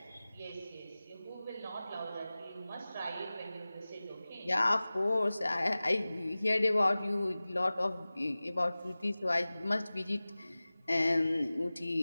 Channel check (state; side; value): inverted; both; correlation -0.98